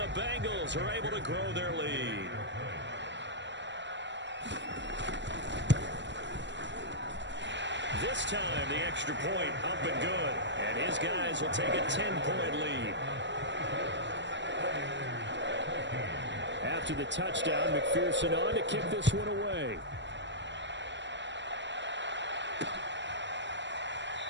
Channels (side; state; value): left; late; 0.53 ms